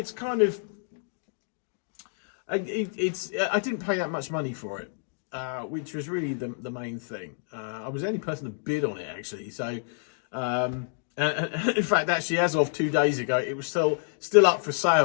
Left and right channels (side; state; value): right; silent; digital silence